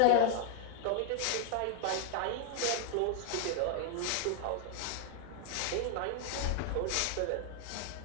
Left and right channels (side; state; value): both; different; correlation 0.00